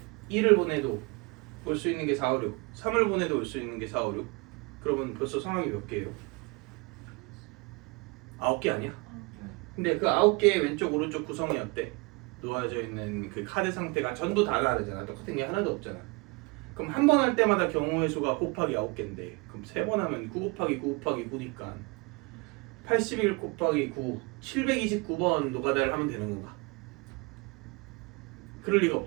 2를 보내도 올 수 있는 게 4, 5, 6 3을 보내도 올 수 있는 게 4, 5, 6 그러면 벌써 상황이 몇 개예요? 9개 아니야? 근데 그 9개의 왼쪽 오른쪽 구성이 어때? 놓아져 있는 그 카드 상태가 전부 다 다르잖아. 똑같은 게 하나도 없잖아. 그럼 한 번 할 때마다 경우의 수가 곱하기 9개인데 그럼 3번 하면 9 곱하기 9 곱하기 9니까 81 곱하기 9 729번 노가다를 하면 되는 건가? 그럴 리가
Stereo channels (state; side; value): quieter; left; 28.0 dB